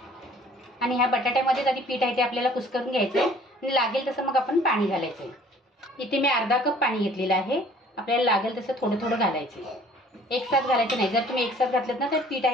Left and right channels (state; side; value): normal; both; correlation 0.53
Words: आणि ह्या बटाट्यामध्ये आधी पीठ आहे ते आपल्याला कुस्करून घ्यायचं आहे आणि लागेल तसं मग आपण पाणी घालायचं आहे। इथे मी अर्धा कप पाणी घेतलेलं आहे, आपल्याला लागेल तसं थोडं थोडं घालायचं आहे, एकसाथ घालायचं नाही। जर तुम्ही एकसाथ घातलं ना तर पीठ